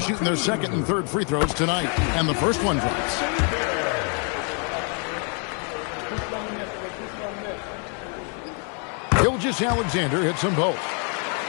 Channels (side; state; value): right; quieter; 39.6 dB